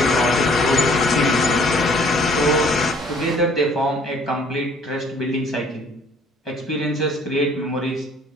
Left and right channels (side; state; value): both; normal; correlation 0.58